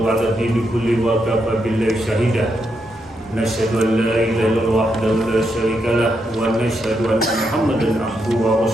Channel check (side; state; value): both; normal; correlation 0.81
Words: 'ala dini kulli wa kafa billahi shahida. Nasyhadu an la ilaha illallah wahdahu la syarika lah wa nasyhadu anna Muhammadan abduhu wa